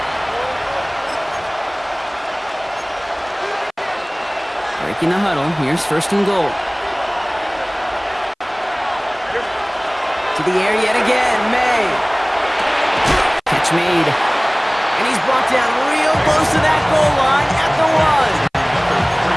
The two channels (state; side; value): identical; both; correlation 1.00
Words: Breaking the huddle, here's 1st and goal. To the air yet again, May. Catch made. And he's brought down real close to that goal line at the 1.